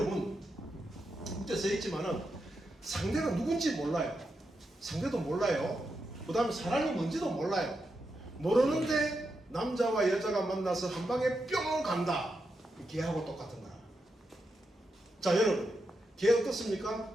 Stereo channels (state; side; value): normal; both; correlation 0.86